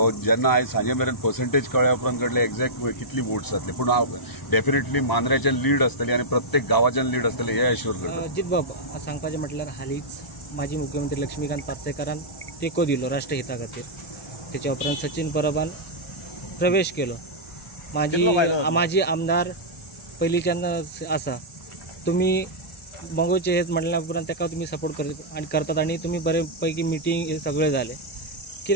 जेन्ना आयज सांजे मेरेन पर्संटेज कळ्ळ्या उपरांत कळटले एक्झॅक्ट कितली वोट्स जातली, पूण डेफिनेटली मांद्रेच्यान लीड आसतली आणि प्रत्येक गांवाच्यान लीड आसतली हे एश्योर करता। अजित बाब सांगपाचें म्हटल्यार हालींच माजी मुख्यमंत्री लक्ष्मीकांत पार्सेकरान तेको दिलो राष्ट्रहिता खातीर, तेच्या उपरांत सचिन परबान प्रवेश केलो, माजी आमदार पयलींच्यान आसा, तुमी मंगोचे हेत म्हणल्या उपरांत तेका तुमी सपोर्ट करतात आणि तुमी बरे पैकी मिटींग हे सगळे जाले,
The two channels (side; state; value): both; normal; correlation -0.10